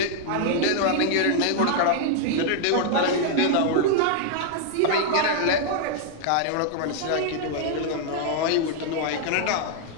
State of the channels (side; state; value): both; different; correlation 0.00